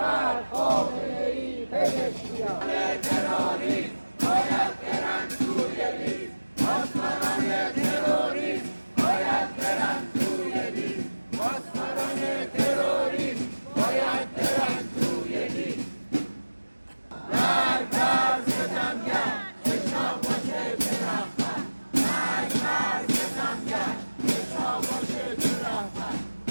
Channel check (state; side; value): inverted; both; correlation -1.00